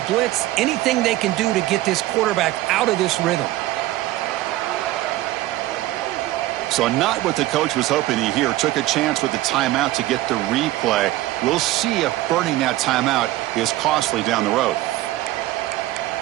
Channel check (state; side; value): quieter; left; 16.3 dB